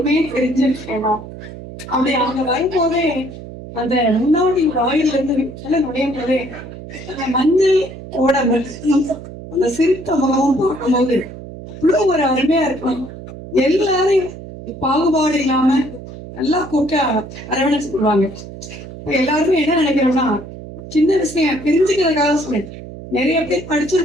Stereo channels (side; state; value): right; noise; hum, 13 dB below the sound